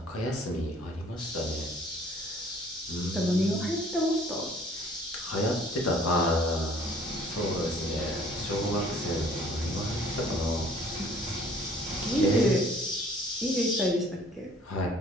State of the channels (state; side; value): normal; both; correlation 0.55